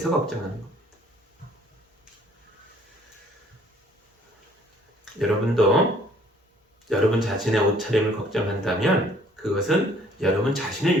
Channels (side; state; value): both; normal; correlation 0.59